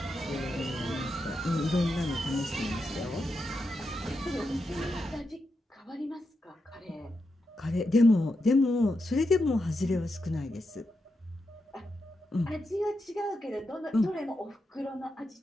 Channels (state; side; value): normal; both; correlation 0.86